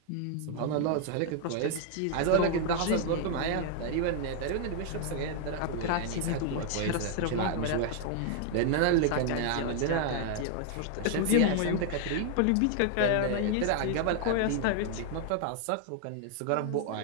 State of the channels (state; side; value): different; both; correlation 0.00